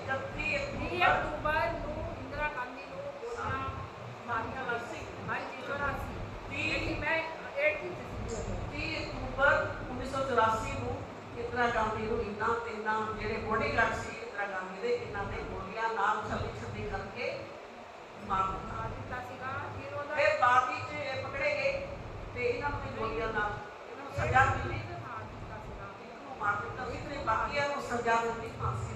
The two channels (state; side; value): identical; both; correlation 1.00